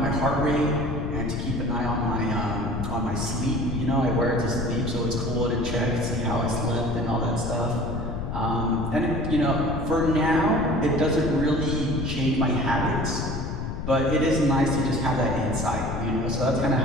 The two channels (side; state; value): left; noise; rumble, 5 dB below the sound